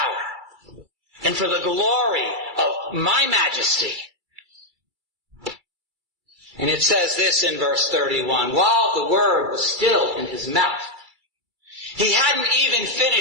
and for the glory of my majesty? And it says this in verse 31, while the word was still in his mouth, he hadn't even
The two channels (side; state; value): left; late; 2.3 ms